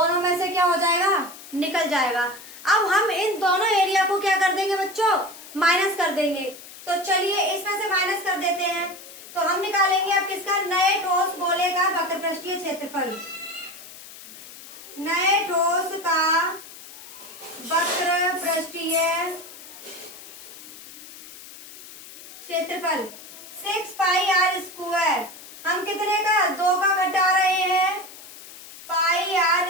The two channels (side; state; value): left; noise; hiss, 16 dB below the sound